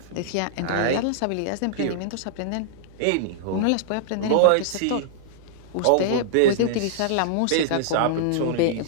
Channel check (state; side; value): different; both; correlation -0.01